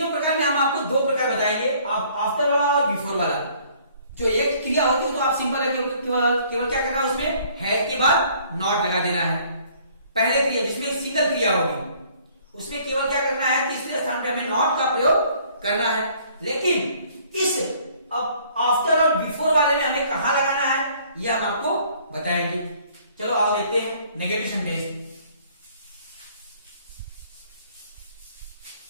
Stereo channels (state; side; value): inverted; both; correlation -0.59